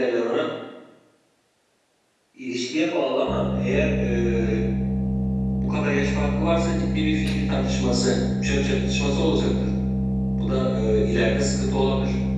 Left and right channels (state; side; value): identical; both; correlation 1.00